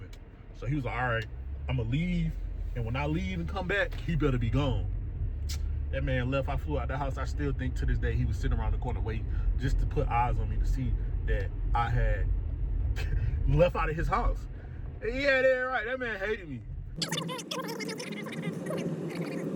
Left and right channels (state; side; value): identical; both; correlation 1.00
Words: So he was like, all right, I'm gonna leave. And when I leave and come back, he better be gone. That man left. I flew out the house. I still think to this day he was sitting around the corner waiting just to put eyes on me to see that I had left out of his house. And yeah, they're right. That man hated me. He called